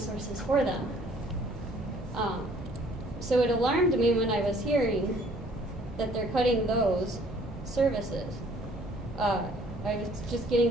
for them. So it alarmed me when I was hearing that they're cutting those services. I was just getting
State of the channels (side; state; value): both; normal; correlation 0.58